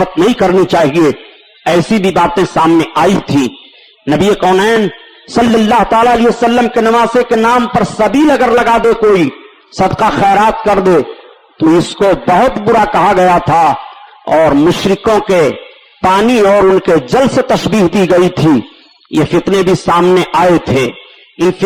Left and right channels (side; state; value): both; identical; correlation 1.00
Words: نہیں کرنی چاہیے، ایسی بھی باتیں سامنے آئی تھی۔ نبی کونین صلی اللہ تعالی علیہ وسلم کے نواسے کے نام پر سبیل اگر لگا دے، کوئی صدقہ خیرات کر دے، تو اس کو بہت برا کہا گیا تھا، اور مشرکوں کے پانی اور ان کے جل سے تشبیہ دی گئی تھی۔ یہ فتنے بھی سامنے آئے تھے۔ ان